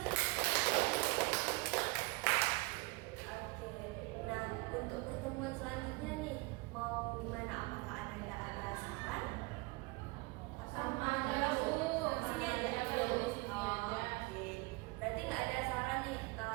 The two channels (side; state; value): left; quieter; 25.1 dB